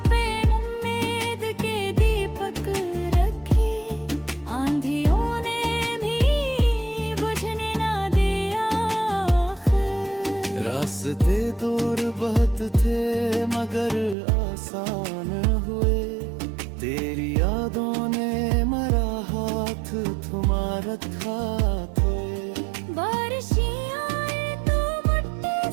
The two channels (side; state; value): left; drops out; at 14.2 s